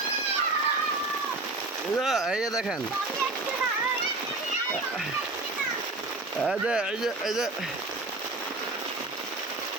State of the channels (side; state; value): left; quieter; 3.1 dB